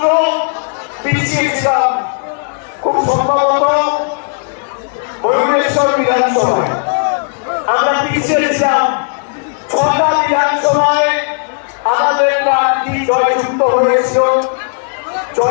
পিছিয়েছিলাম, খুব সম্ভবত ভুবনেশ্বর বিধানসভায় আমরা পিছিয়েছিলাম। 6টা বিধানসভায় আমাদের প্রার্থী জয়যুক্ত হয়েছিল,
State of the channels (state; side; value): silent; right; digital silence